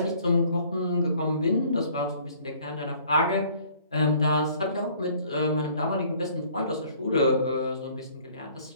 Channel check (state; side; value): inverted; both; correlation -0.57